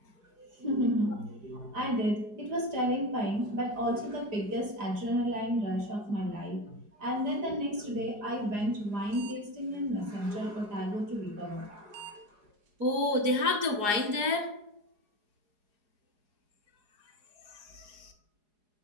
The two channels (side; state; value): left; late; 4.8 ms